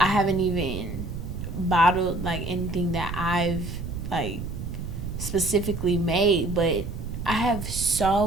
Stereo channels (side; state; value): right; noise; rumble, 6 dB below the sound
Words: haven't even bottled like anything that I've like specifically made, but I have